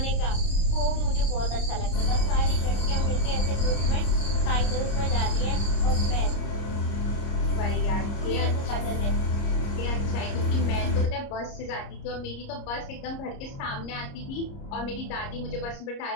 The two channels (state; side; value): late; right; 30 ms